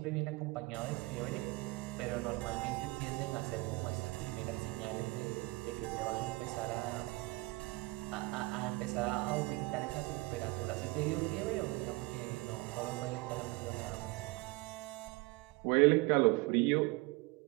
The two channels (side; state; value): left; quieter; 23.3 dB